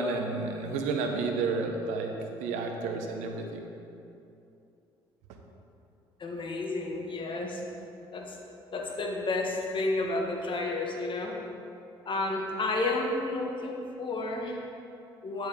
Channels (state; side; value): normal; both; correlation 0.45